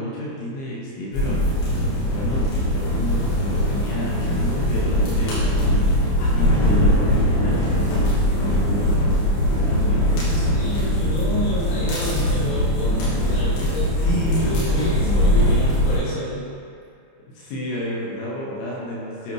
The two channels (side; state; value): right; late; 30 ms